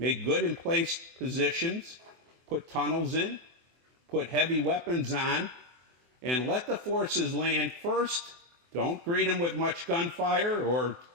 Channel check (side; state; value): left; late; 24 ms